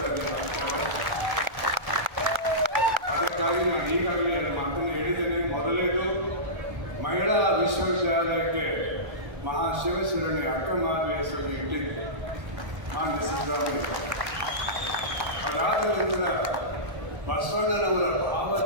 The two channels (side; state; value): left; late; 1.3 ms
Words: ಅದಕ್ಕಾಗಿ ನಾನು ಈಗಾಗಲೇ 2 ಮಾತನ್ನು ಹೇಳಿದ್ದೇನೆ. ಮೊದಲೇದು, ಮಹಿಳಾ ವಿಶ್ವವಿದ್ಯಾಲಯಕ್ಕೆ ಮಹಾಶಿವಶರಣೆ ಅಕ್ಕಮಾತೆ ಹೆಸರು ಇಟ್ಟಿದ್ದು ಮಾನ್ಯ ಸಿದ್ದರಾಮಯ್ಯ. ಅದಾದ ನಂತರ ಬಸವಣ್ಣನವರ